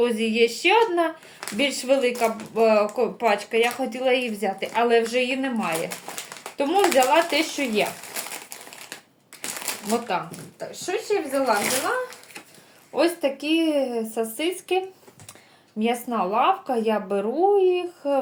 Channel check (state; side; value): identical; both; correlation 1.00